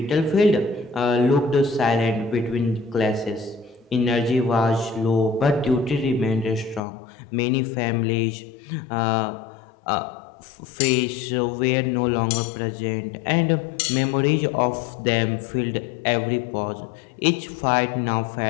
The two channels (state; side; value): drops out; right; at 6.8 s